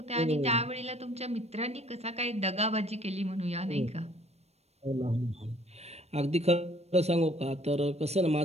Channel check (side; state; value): left; late; 0.31 ms